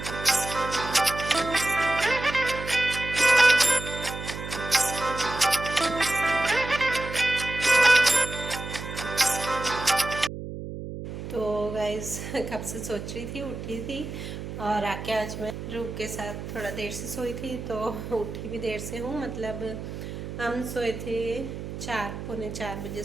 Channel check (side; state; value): right; noise; hum, 8 dB below the sound